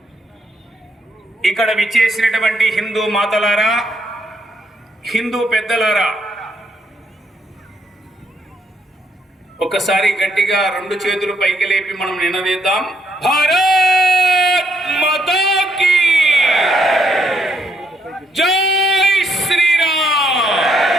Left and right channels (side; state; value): both; normal; correlation 0.73